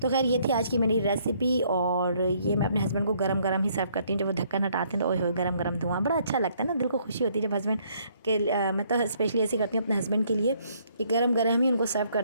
तो खैर ये थी आज की मेरी रेसिपी और ये मैं अपने हस्बैंड को गरम गरम ही सर्व करती हूँ। जब वो ढक्कन हटाते हैं तो ओए होए गरम गरम धुआं बड़ा अच्छा लगता है ना, दिल को खुशी होती है जब हस्बैंड के मैं तो स्पेशली ऐसे करती हूँ अपने हस्बैंड के लिए कि गरम गरम ही उनको सर्व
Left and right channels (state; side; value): inverted; both; correlation -0.67